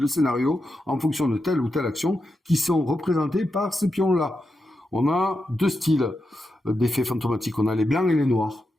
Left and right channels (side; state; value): both; normal; correlation 0.88